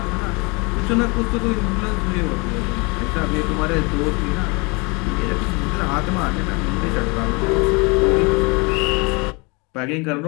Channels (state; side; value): quieter; right; 29.1 dB